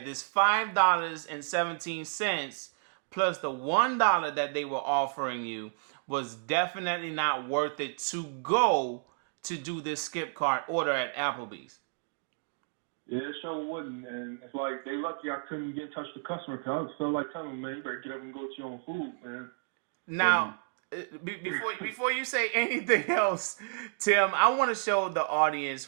this $5.17 plus the $1 that they were offering you was definitely not worth it to go to do this SkipCart order at Applebee's? Yeah, it sure wouldn't. And it's like, they lucky I couldn't get in touch with the customer, because I just felt like telling them, man, you better get up and go get your own food, man. Now, before you say anything else, Tim, I want to show the audience,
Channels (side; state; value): left; silent; digital silence